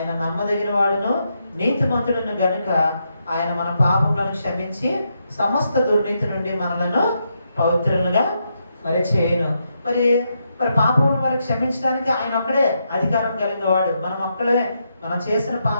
నమ్మదగిన వాడును నీతిమంతుడును గనుక ఆయన మన పాపములను క్షమించి సమస్త దుర్నీతి నుండి మనలను పవిత్రులుగా మరి చేయను. మరి మరి పాపములను మరి క్షమించడానికి ఆయన ఒక్కడే అధికారం కలిగిన వాడు. మనం ఒక్కడే మనం చేసిన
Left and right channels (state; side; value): inverted; both; correlation -0.81